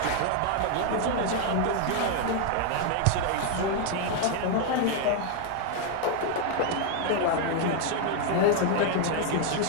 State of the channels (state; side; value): different; both; correlation 0.00